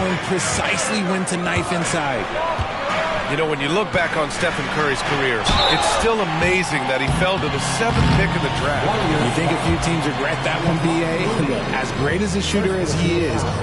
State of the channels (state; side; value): identical; both; correlation 1.00